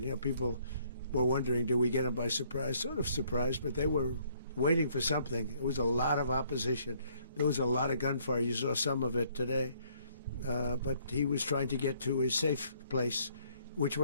People were wondering, do we get them by surprise? Sort of surprised, but they were waiting for something. It was a lot of opposition. There was a lot of gunfire. You saw some of it today. But he was trying to get to a safe place, which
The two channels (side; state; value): both; inverted; correlation -0.65